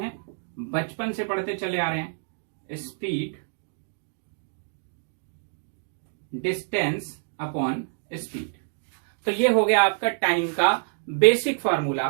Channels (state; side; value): silent; left; digital silence